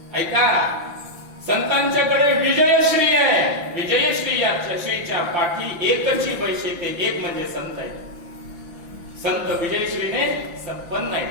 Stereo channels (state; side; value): late; left; 5.8 ms